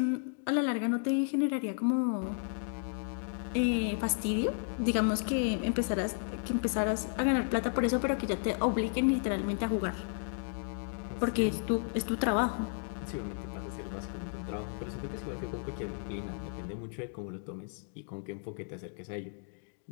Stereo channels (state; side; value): silent; right; digital silence